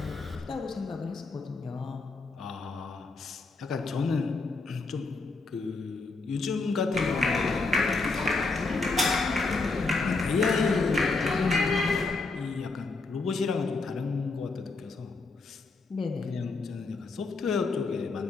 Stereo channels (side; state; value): right; quieter; 3.7 dB